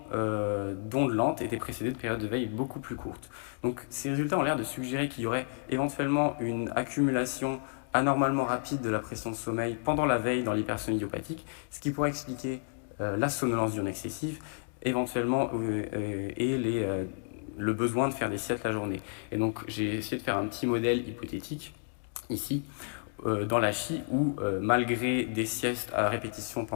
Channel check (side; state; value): right; silent; digital silence